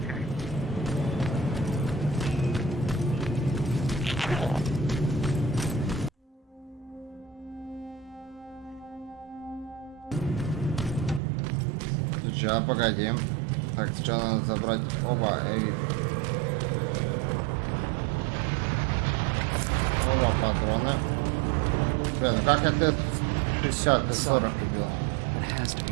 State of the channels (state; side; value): drops out; left; at 11.2 s